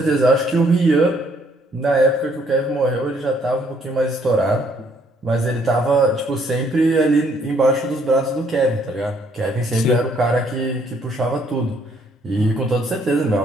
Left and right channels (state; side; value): normal; both; correlation 0.66